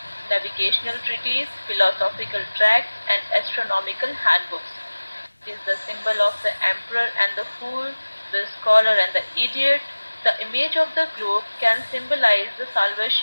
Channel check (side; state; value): both; inverted; correlation -1.00